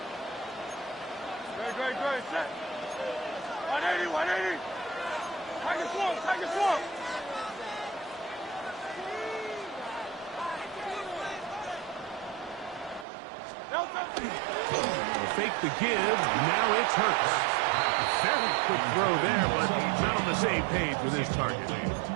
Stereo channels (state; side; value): drops out; left; at 13.1 s